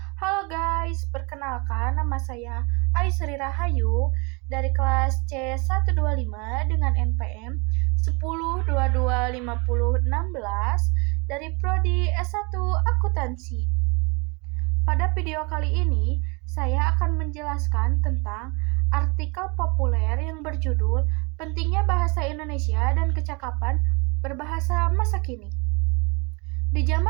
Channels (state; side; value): quieter; left; 29.7 dB